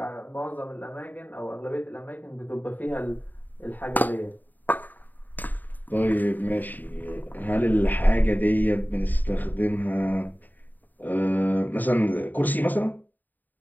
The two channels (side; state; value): right; late; 0.086 ms